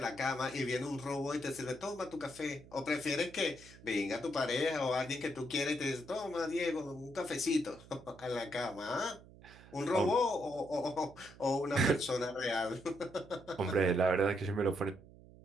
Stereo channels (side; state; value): right; noise; hum, 21 dB below the sound